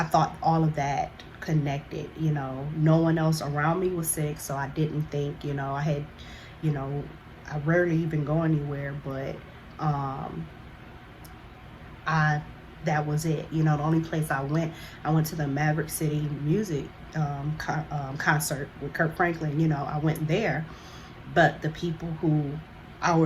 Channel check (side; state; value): both; identical; correlation 1.00